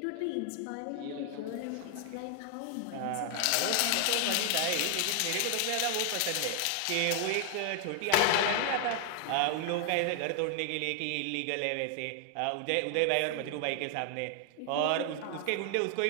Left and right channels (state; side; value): different; both; correlation 0.00